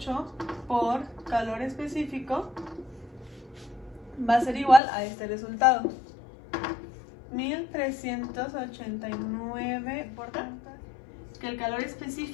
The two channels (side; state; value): right; drops out; at 4.8 s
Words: por calor específico va a ser igual a este resultado: 1389, por tanto, que el calor